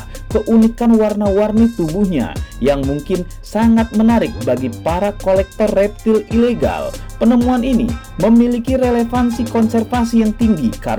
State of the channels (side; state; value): both; identical; correlation 1.00